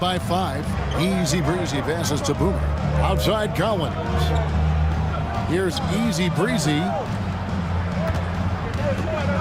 5. Easy Breezy passes to Boomer. Outside Collins. Here's Easy Breezy.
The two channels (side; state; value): both; identical; correlation 1.00